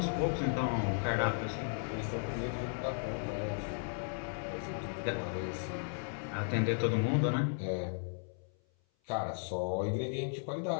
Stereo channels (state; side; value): silent; right; 54 dB below the other